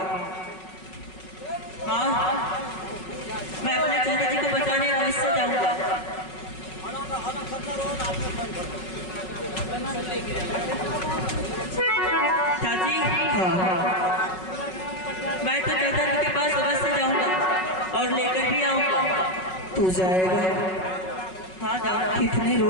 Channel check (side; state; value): right; late; 5.4 ms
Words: हाँ, मैं अपने चाचा जी को बचाने अवश्य जाऊंगा। चाची, मैं तो चाचा जी के पास अवश्य जाऊंगा और लेकर भी आऊंगा। तू जाएगा? हाँ जाऊंगा। कितने